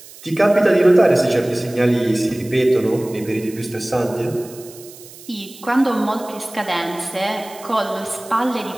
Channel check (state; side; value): noise; right; hiss, 19 dB below the sound